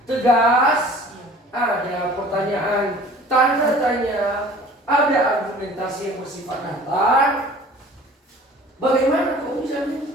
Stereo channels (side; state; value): both; normal; correlation 0.47